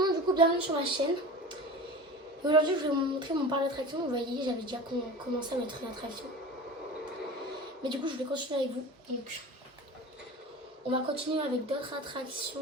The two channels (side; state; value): both; normal; correlation 0.34